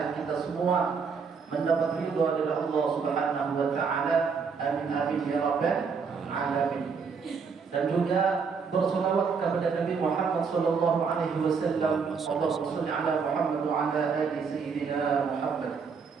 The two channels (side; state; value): left; quieter; 5.6 dB